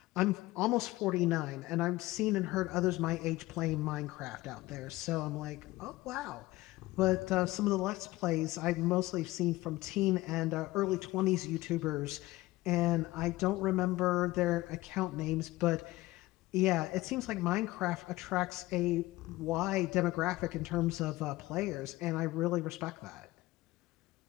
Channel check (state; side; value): quieter; right; 18.7 dB